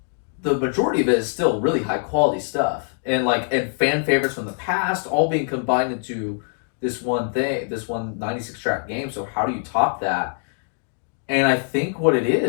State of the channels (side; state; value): right; silent; 63 dB below the other